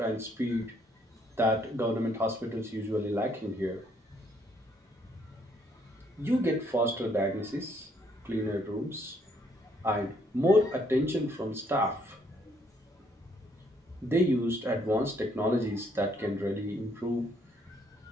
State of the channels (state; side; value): normal; both; correlation 0.69